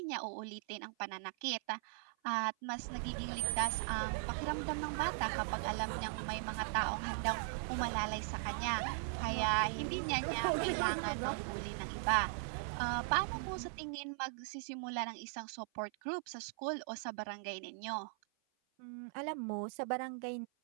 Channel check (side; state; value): left; silent; 52 dB below the other